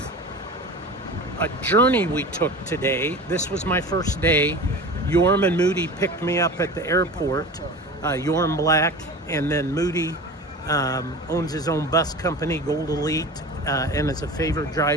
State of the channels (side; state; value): both; normal; correlation 0.34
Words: a journey we took today. This was my first day. Yorm and Moody picked me up at the airport. Yorm Black, and then Moody owns his own bus company, Gold Elite, and as a favor